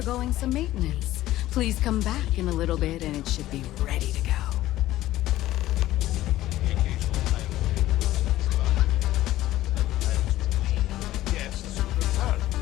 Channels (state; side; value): quieter; right; 15.1 dB